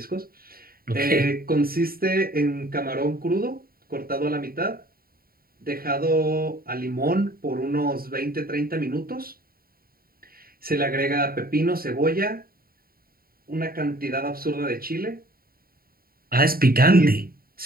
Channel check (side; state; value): left; late; 0.43 ms